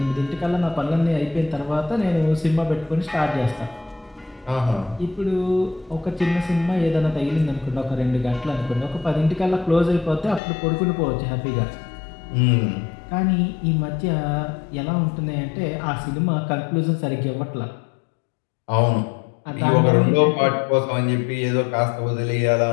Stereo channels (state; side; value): drops out; right; at 10.4 s